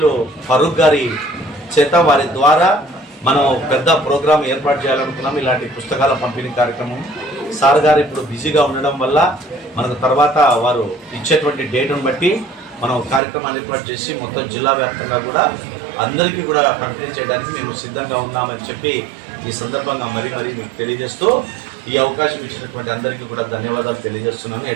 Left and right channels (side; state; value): left; drops out; at 13.2 s